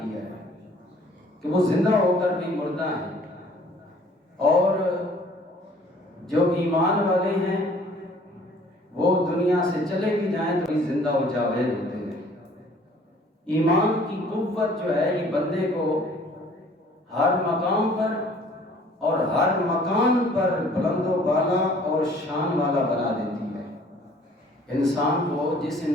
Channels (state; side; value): normal; both; correlation 0.55